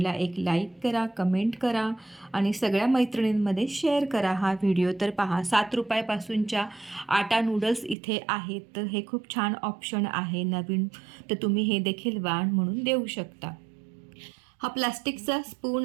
एक लाईक करा, कमेंट करा आणि सगळ्या मैत्रिणींमध्ये शेअर करा हा व्हिडिओ. तर पहा, 7 रुपयापासूनच्या आटा नूडल्स इथे आहेत. तर हे खूप छान ऑप्शन आहे नवीन, तर तुम्ही हे देखील वाण म्हणून देऊ शकता. हा प्लास्टिकचा स्पून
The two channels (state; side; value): drops out; left; at 8.0 s